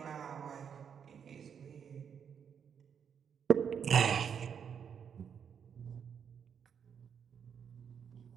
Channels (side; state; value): left; quieter; 7.5 dB